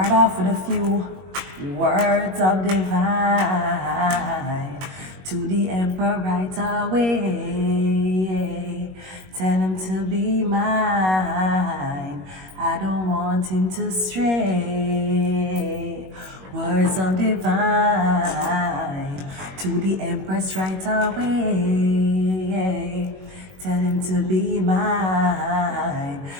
off with a few words of divine to the emperor right away. Tell him to be mine. I don't want him to stray. Words of divine to the empress right away. Tell him to be mine.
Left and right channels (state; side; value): late; left; 21 ms